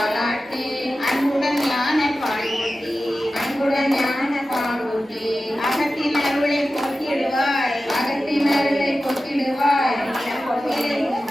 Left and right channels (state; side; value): normal; both; correlation 0.94